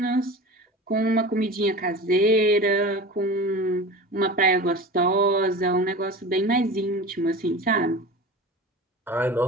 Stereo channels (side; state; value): both; normal; correlation 0.34